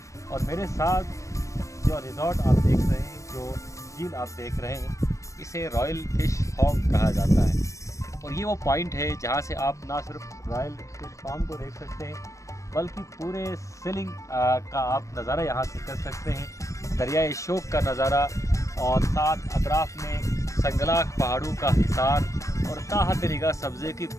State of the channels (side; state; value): right; late; 0.15 ms